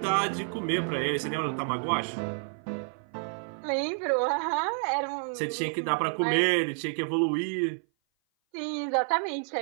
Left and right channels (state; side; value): silent; left; 56 dB below the other